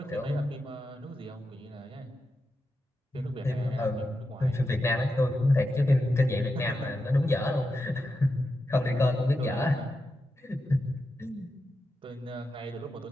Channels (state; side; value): normal; both; correlation 0.88